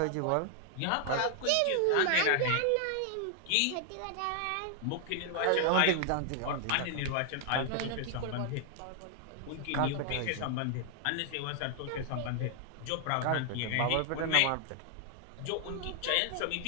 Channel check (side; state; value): both; different; correlation 0.00